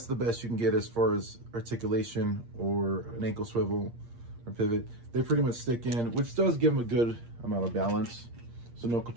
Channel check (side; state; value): left; late; 8.6 ms